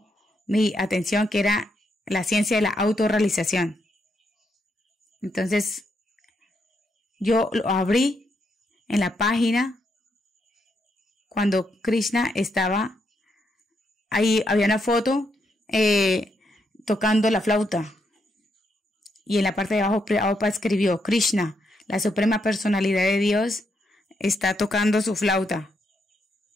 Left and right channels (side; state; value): both; normal; correlation 0.79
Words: mi atención que era La ciencia de la autorrealización. Entonces, yo lo abrí en la página cuando Krishna estaba ahí, había una foto tocando la flauta. Y en la parte de abajo, Prabhupada escribió, Krishna, la suprema personalidad de Dios, está tocando su flauta.